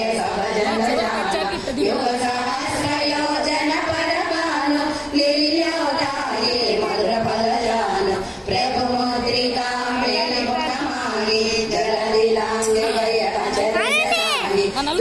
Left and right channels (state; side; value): identical; both; correlation 1.00